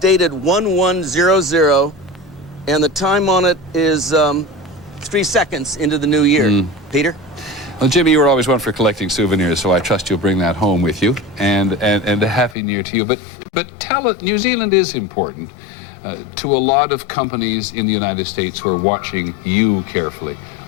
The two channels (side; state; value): right; drops out; at 12.6 s